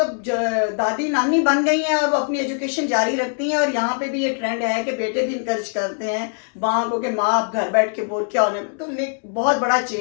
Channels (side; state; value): right; silent; 65 dB below the other